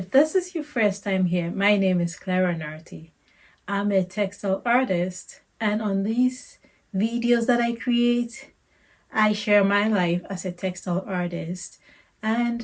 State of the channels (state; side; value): identical; both; correlation 1.00